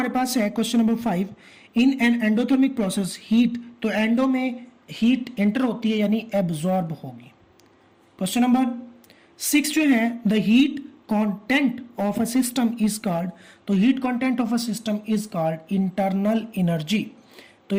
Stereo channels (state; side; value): identical; both; correlation 1.00